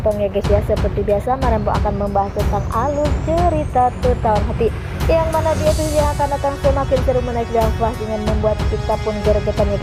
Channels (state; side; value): identical; both; correlation 1.00